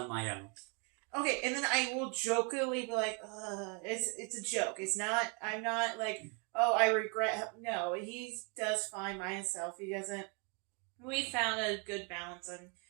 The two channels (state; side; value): quieter; left; 35.1 dB